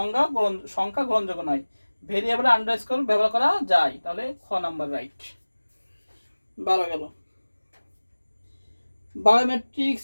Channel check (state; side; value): inverted; both; correlation -1.00